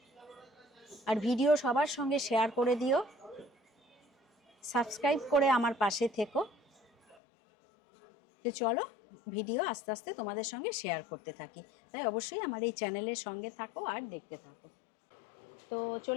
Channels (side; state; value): right; drops out; at 7.2 s